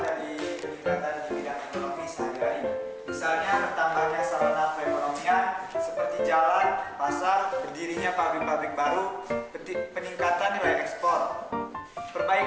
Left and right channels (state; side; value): identical; both; correlation 1.00